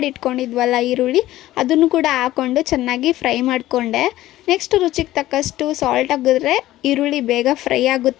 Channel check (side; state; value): right; quieter; 15.3 dB